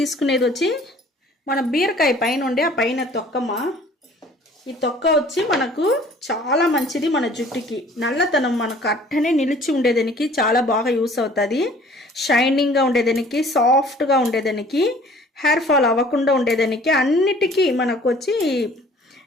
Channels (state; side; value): normal; both; correlation 0.52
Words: వచ్చి మన బీరకాయ పైన ఉండే ఆ పైన తొక్కమ్మ. ఈ తొక్క వచ్చి మనకు చాలా మంచిది. మన జుట్టుకి నల్లతనం మనకు అట్టనే నిలిచి ఉండేదానికి చాలా బాగా యూస్ అవుతుంది. షైనింగ్గా ఉండేదానికి, సాఫ్ట్గా ఉండేదానికి, హెయిర్ ఫాల్ అవ్వకుండా ఉండేదానికి అన్నిటికీ మనకు వచ్చి